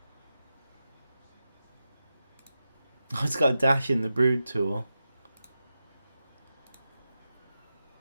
Oh, it's got a dash in the brood tool.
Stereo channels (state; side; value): inverted; both; correlation -0.91